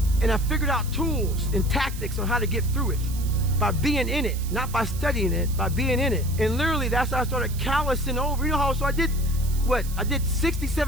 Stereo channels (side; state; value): right; noise; hiss, 15 dB below the sound